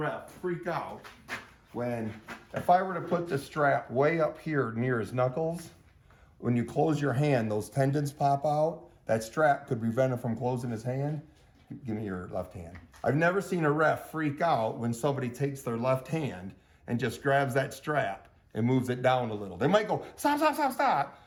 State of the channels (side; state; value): both; identical; correlation 1.00